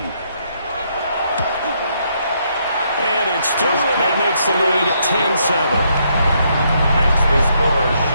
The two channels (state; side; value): inverted; both; correlation -0.74